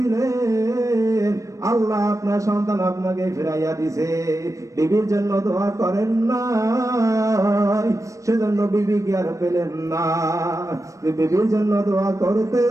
আল্লাহ আপনার সন্তান আপনাকে ফিরাইয়া দিছে। বিবির জন্য দোয়া করেন না, সেজন্য বিবি কি আর পেলেন না? বিবির জন্য দোয়া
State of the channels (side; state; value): left; late; 0.15 ms